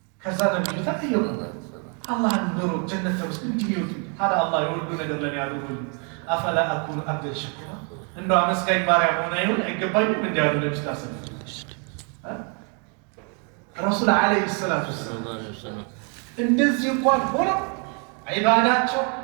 ከዛ ነብዩ ተጠየቁ አላህን ኑሮ ጀነት ተመስል እንዲሚወጡ ታዲያ አላህ የወዱ ነገር ለኔ ያደርጉልኝ አፈላ አኩኑ አብደን ሸኩራ እንደው አመስጋኝ ባሪያ መሆን አይገባኝም እንዲያሉ ነብዩ ታሰብ ረሱል ዓለይሂ ሰላቱ ወሰላም እንደዚህ እንኳን ሆነው ዒባዳቸው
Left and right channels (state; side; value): quieter; left; 38.1 dB